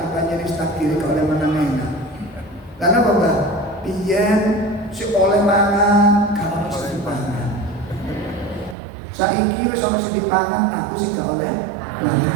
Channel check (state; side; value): drops out; left; at 8.8 s